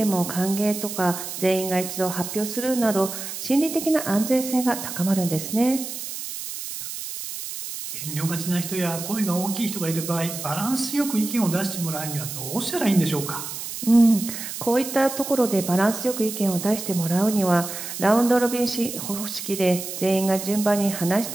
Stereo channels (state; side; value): noise; right; hiss, 8 dB below the sound